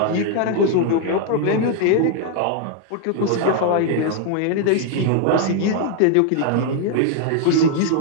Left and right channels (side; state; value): both; different; correlation 0.00